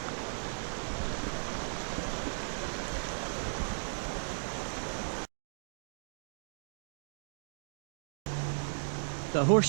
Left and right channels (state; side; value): silent; left; digital silence